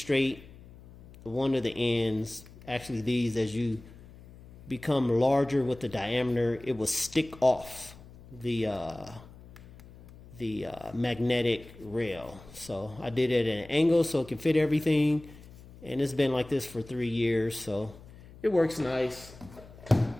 one of the ends, actually these, as you become larger with the diameter, it will stick off the magnetic rail. So I did it at an angle so it can fit everything, and it's been like this for 3 years, so it works nice.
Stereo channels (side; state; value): left; noise; hum, 20 dB below the sound